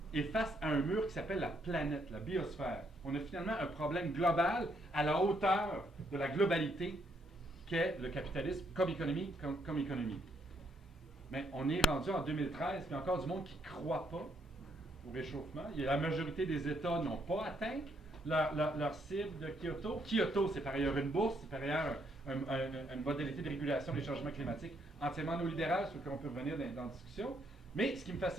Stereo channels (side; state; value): both; normal; correlation 0.73